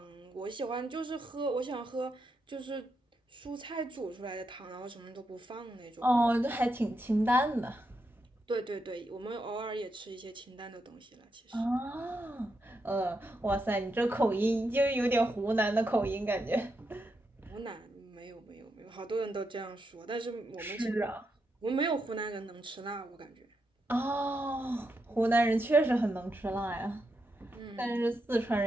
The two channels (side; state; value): both; normal; correlation 0.83